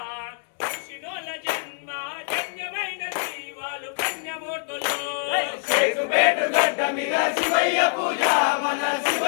శినోల జన్మ ధన్యమైనది వాళ్ళు పుణ్యమూర్తులు చెక్కుబెట్టు గడ్డ మీద శివయ్య పూజ మన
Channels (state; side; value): silent; right; digital silence